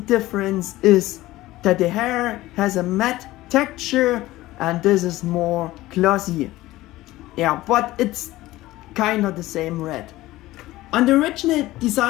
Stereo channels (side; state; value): right; quieter; 17.2 dB